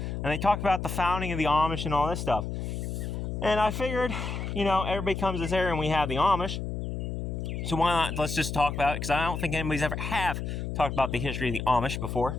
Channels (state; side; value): noise; left; hum, 4 dB below the sound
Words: And they talked about the founding of the Amish and all this stuff. And I figured, everybody comes to this area and we have the Amish. So why not, let's just talk about it, because I don't think anybody's ever have talked about the history of the Amish before